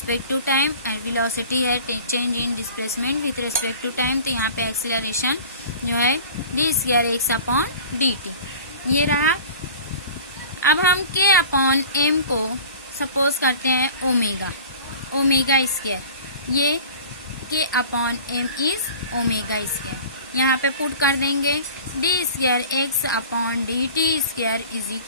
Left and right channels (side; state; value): both; inverted; correlation -0.41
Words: to time and velocity है change in displacement with respect to time. तो यहाँ पे acceleration जो है d square x upon dt ये रहा। अब हम k अपॉन m को सपोज करते हैं ओमेगा, ओमेगा स्क्वायर, ये k upon m is omega square. यहाँ पे पुट कर देंगे d square x upon d t square is